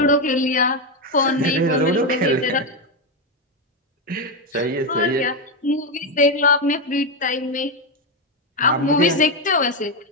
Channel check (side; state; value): both; normal; correlation 0.08